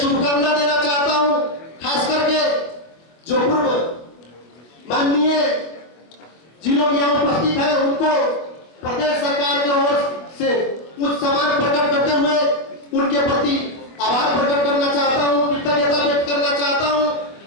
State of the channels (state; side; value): late; right; 24 ms